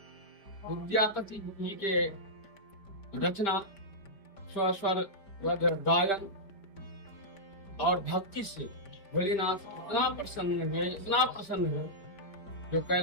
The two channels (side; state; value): right; late; 5.1 ms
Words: विद्यापति जी के रचना स्वर गायन और भक्ति से भोलेनाथ इतना प्रसन्न हुए जो